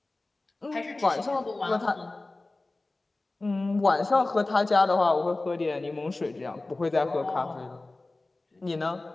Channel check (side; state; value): right; quieter; 3.1 dB